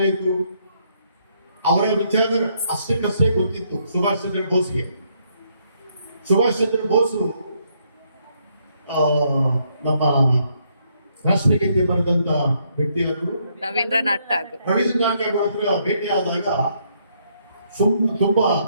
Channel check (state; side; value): inverted; both; correlation -0.72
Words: ಅವರ ವಿಚಾರ ಅಷ್ಟಕ್ಕಷ್ಟೇ ಗೊತ್ತಿತ್ತು ಸುಭಾಷ್ ಚಂದ್ರ ಬೋಸ್ಗೆ. ಸುಭಾಷ್ ಚಂದ್ರ ಬೋಸು ನಮ್ಮ ರಾಷ್ಟ್ರಗೀತೆ ಬರೆದಂತ ವ್ಯಕ್ತಿಯಾದರು. ರವೀಂದ್ರನಾಥ್ ಠಾಗೂರ್ ಹತ್ರ ಭೇಟಿಯಾದಾಗ ತುಂಬಾ